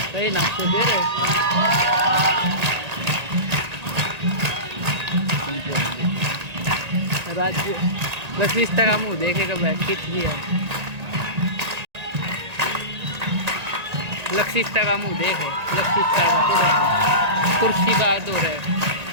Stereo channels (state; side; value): late; left; 1.9 ms